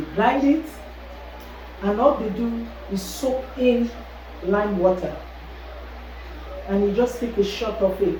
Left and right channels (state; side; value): identical; both; correlation 1.00